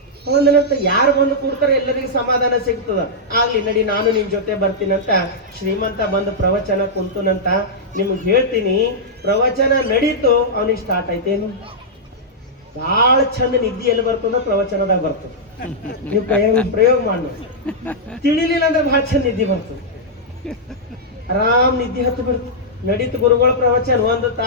ಅವ ಅಂದನಂತ, ಯಾರು ಬಂದು ಕೊಡ್ತಾರೆ ಎಲ್ಲರಿಗೂ ಸಮಾಧಾನ ಸಿಗ್ತದ, ಆಗ್ಲಿ ನಡಿ ನಾನು ನಿಮ್ ಜೊತೆ ಬರ್ತೀನಂತ ಶ್ರೀಮಂತ ಬಂದು ಪ್ರವಚನ ಕುಂತನಂತ. ನಿಮ್ಗೆ ಹೇಳ್ತೀನಿ, ಪ್ರವಚನ ನಡೀತು, ಅವನಿಗೆ ಸ್ಟಾರ್ಟ್ ಆಯ್ತೇನು, ಬಹಳ ಚಂದ ನಿದ್ದೆ ಎಲ್ಲಿ ಬರ್ತದ? ಪ್ರವಚನದಾಗ ಬರ್ತದೆ. ನೀವು ಪ್ರಯೋಗ ಮಾಡ, ತಿಳಿಲಿಲ್ಲ ಅಂದ್ರೆ ಬಹಳ ಚಂದ ನಿದ್ದೆ ಬರ್ತದೆ, ಆರಾಮ್ ನಿದ್ದೆ ಹತ್ತು ಬಿಡ್ತು. ನಡೀತು ಗುರುಗಳ ಪ್ರವಚನ, ಒಂದು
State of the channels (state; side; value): normal; both; correlation -0.09